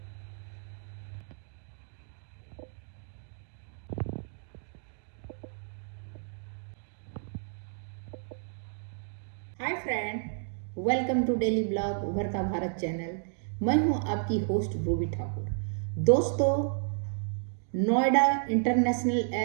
friend, welcome to daily blog Ubharta Bharat channel. मैं हूं आपकी होस्ट रूबी ठाकुर। दोस्तों, नोएडा इंटरनेशनल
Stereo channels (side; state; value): left; silent; digital silence